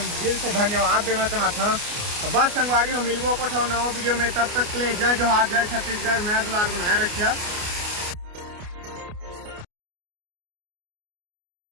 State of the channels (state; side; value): late; left; 29 ms